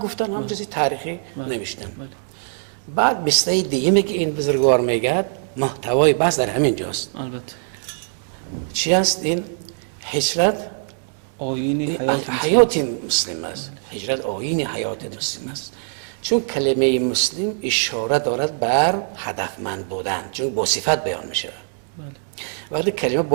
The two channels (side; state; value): left; silent; digital silence